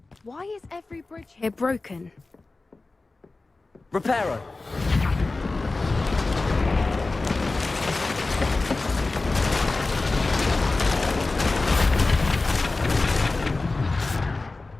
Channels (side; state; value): right; quieter; 3.4 dB